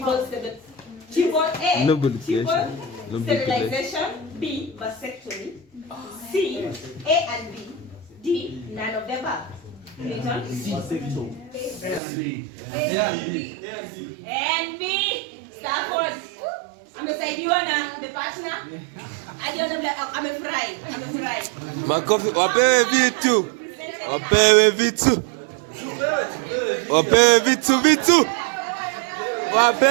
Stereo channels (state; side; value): drops out; left; at 12.0 s